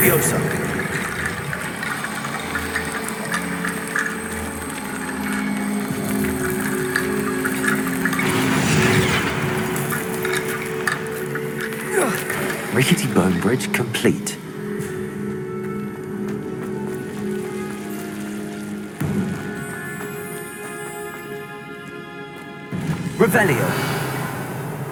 Rickety Bone Bridge complete. Revelio.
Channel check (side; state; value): both; identical; correlation 1.00